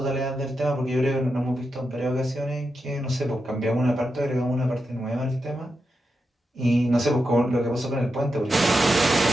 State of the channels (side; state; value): both; normal; correlation 0.87